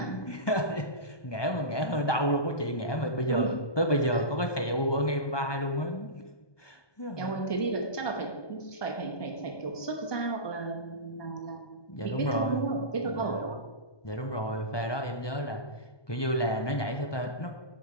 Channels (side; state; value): right; late; 1.2 ms